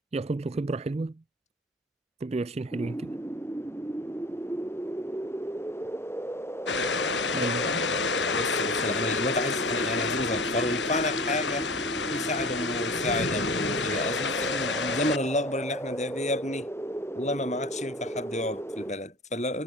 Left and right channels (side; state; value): both; normal; correlation 0.38